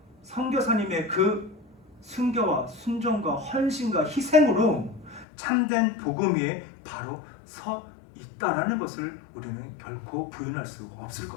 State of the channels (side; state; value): right; drops out; at 5.2 s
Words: 선교사님의 그 순교와 순종과 헌신과 희생으로 참된 복음 위에 바로 서 있다라는 것을 우리는 결코 부인할 수 없을